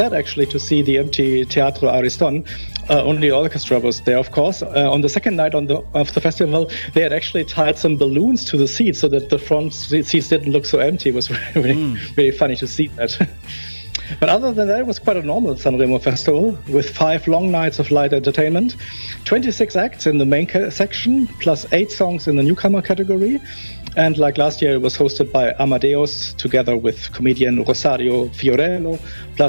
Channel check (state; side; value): inverted; both; correlation -1.00